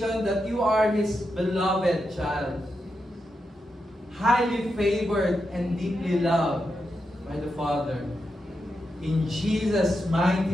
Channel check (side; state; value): both; normal; correlation 0.86